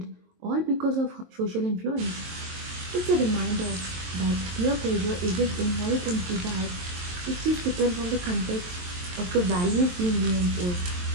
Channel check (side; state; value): left; late; 23 ms